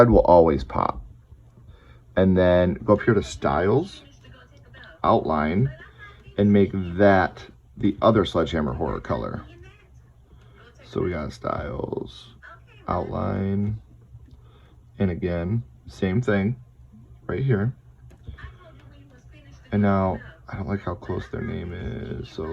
will always pop. And then go up here to Styles, Outline, and make that the other Sledgehammer Horror color. So we got Styles, Outline, and again, Same thing right here. And now, I don't like how close their name is. So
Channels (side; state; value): both; identical; correlation 1.00